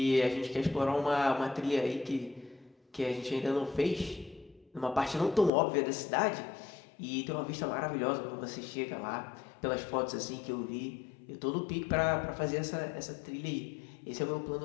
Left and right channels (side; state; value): right; drops out; at 5.5 s